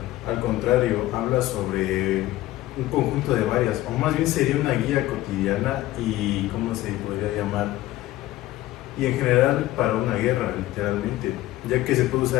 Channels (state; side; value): quieter; right; 15.9 dB